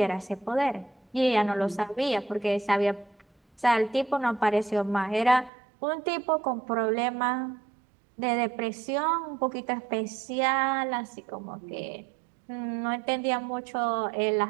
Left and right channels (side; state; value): left; drops out; at 5.5 s